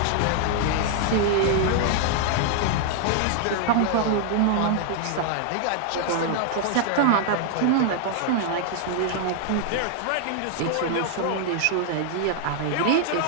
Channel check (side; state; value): both; different; correlation 0.00